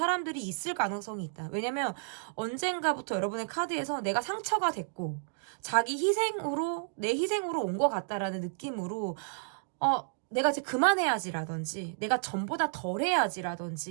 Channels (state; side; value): silent; left; digital silence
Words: 있을 가능성이 있다. 왜냐면 언젠가부터 여러분의 카드에서 내가 상처가 됐고 자기 희생으로, 내 희생으로 온 것 같다라는 느낌으로 내가 이제 그만해야지라든지 내가 전보다 덜